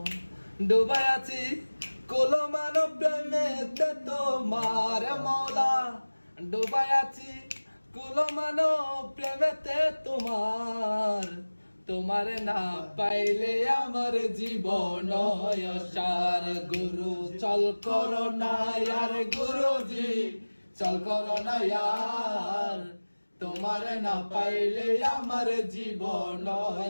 ডুবাই আছি কুলমান প্রেমেতে তোমার মৌলা ডুবাই আছি কুলমান প্রেমেতে তোমার না পাইলে আমার জীবন অসার গুরু চল করো না यार গুরুজি চল করো না यार তোমার না পাইলে আমার জীবন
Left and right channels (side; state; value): both; inverted; correlation -1.00